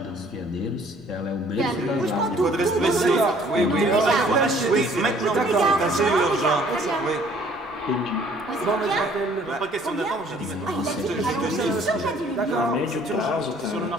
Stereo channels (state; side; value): noise; left; rumble, 30 dB below the sound